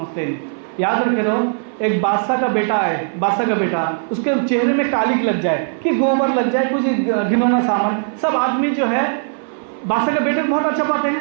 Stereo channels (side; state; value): left; silent; 58 dB below the other